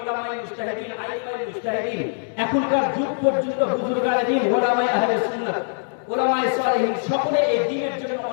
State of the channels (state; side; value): silent; right; digital silence